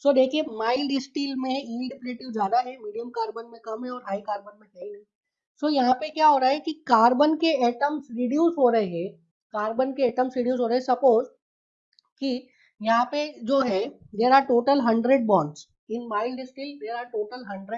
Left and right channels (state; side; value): identical; both; correlation 1.00